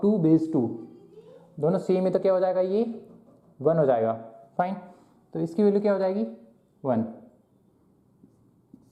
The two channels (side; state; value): both; identical; correlation 1.00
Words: 2 बेस 2, दोनों सेम है तो क्या हो जाएगा, ये 1 हो जाएगा। फाइन, तो इसकी वैल्यू क्या हो जाएगी 1।